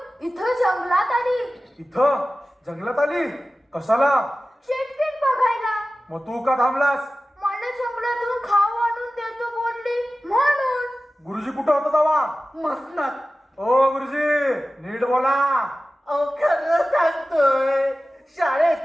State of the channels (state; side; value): normal; both; correlation 0.96